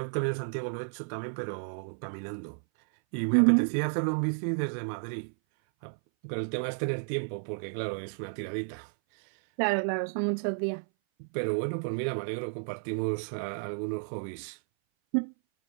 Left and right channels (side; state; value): left; silent; 57 dB below the other